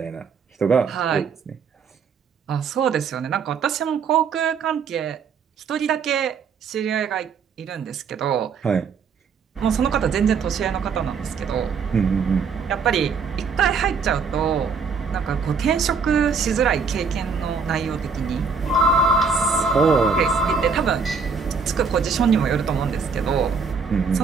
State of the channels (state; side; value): quieter; left; 5.5 dB